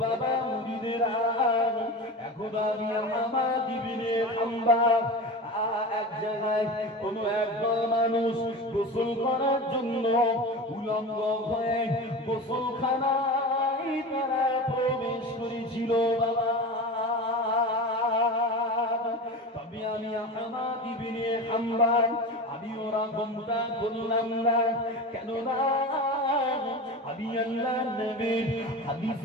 বাবা মুরিদেরা, এখন আমি আহমদ ইবনে হাম্বল এক জায়গায় কোন একদল মানুষ গোসল করার জন্য উলঙ্গ হয়ে গোসলখানায় তারা প্রবেশ করেছিল বাবা। তবে আমি আহমদ ইবনে হাম্বল আমি ওরা গমটা করলাম না, কেননা আমি আল্লাহর নবীর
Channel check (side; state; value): both; normal; correlation 0.29